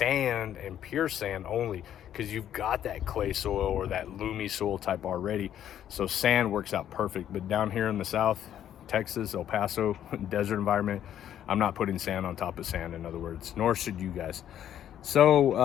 and pure sand only, because you've got that clay soil or that loomy soil type already. So sand works out perfect. But down here in the south, Texas, El Paso, desert environment, I'm not putting sand on top of sand, in other words, nor should you guys.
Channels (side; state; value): right; quieter; 10.6 dB